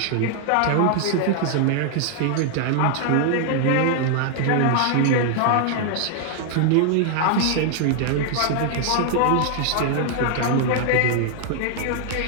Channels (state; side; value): different; both; correlation 0.00